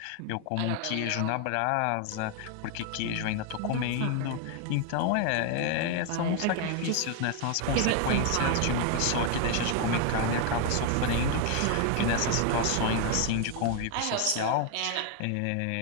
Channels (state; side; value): different; both; correlation 0.01